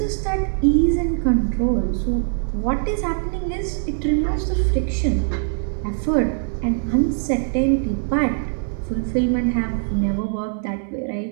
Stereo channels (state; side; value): silent; left; digital silence